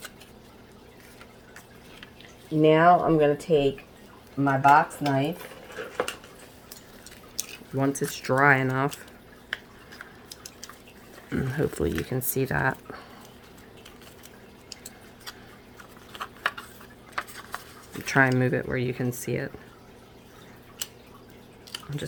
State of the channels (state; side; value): identical; both; correlation 1.00